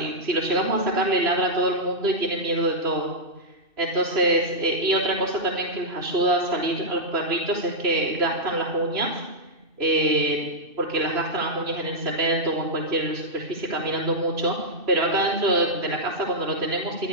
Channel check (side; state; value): left; late; 2.6 ms